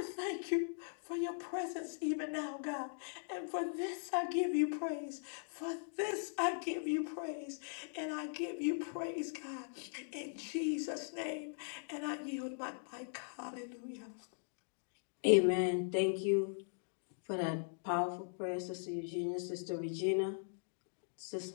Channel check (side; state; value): right; silent; digital silence